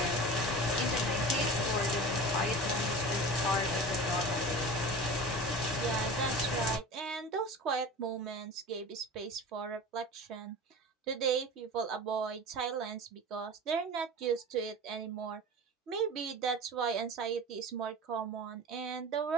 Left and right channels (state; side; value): normal; both; correlation 0.34